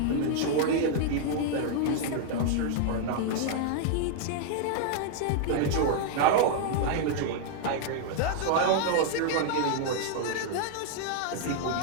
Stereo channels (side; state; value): both; different; correlation -0.01